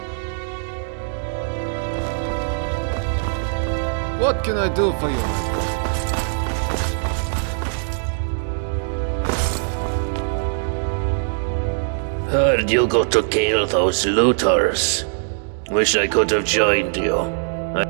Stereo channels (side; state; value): left; silent; 65 dB below the other